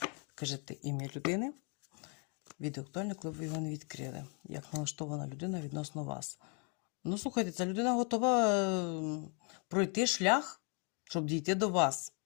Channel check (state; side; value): quieter; right; 37.5 dB